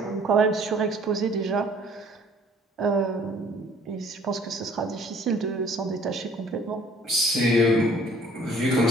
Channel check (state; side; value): normal; both; correlation 0.56